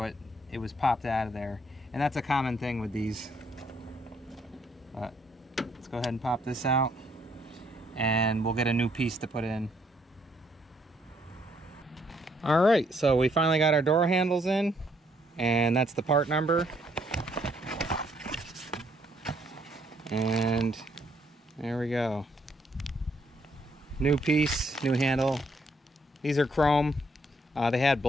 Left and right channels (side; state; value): both; normal; correlation 0.70